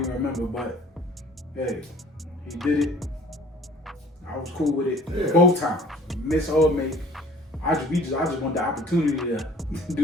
even remember, but hey, he did it. I was cool with it both times. Miss or make. I just want the opportunity to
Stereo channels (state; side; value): normal; both; correlation 0.52